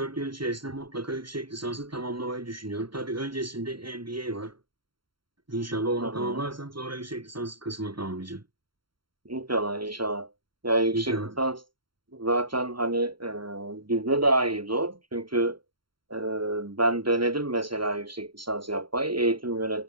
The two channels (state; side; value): late; left; 0.73 ms